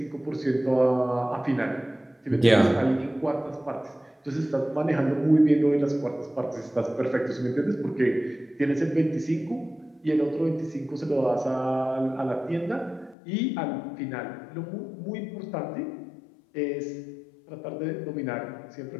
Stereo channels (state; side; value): drops out; right; at 13.2 s